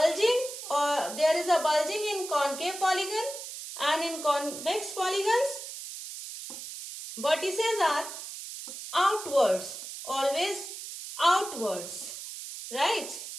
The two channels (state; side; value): noise; right; hiss, 10 dB below the sound